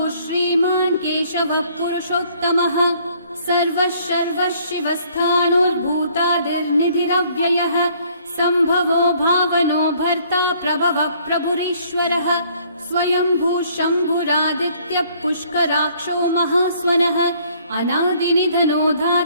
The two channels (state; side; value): inverted; both; correlation -0.61